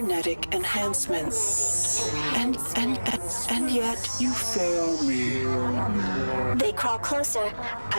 enhancements. And yet you fail me. They crawl closer,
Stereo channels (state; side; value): inverted; both; correlation -1.00